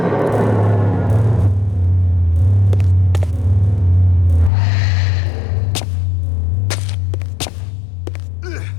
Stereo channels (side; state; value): right; drops out; at 4.5 s